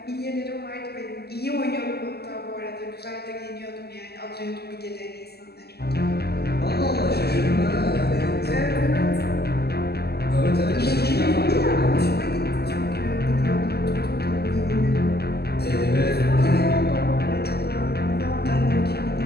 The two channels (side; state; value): right; late; 0.46 ms